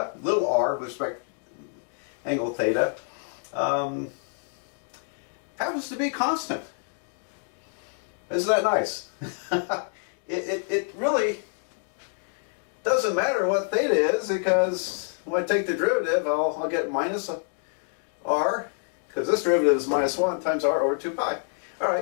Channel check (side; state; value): right; silent; 60 dB below the other